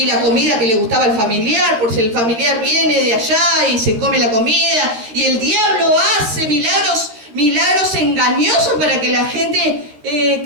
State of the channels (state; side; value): late; left; 13 ms